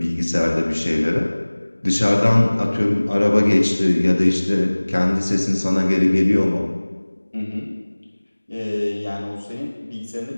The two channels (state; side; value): inverted; both; correlation -1.00